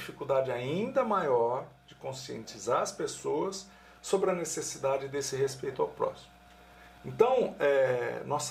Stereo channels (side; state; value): both; identical; correlation 1.00